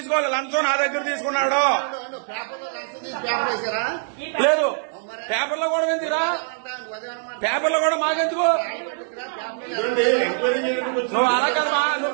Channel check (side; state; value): left; silent; digital silence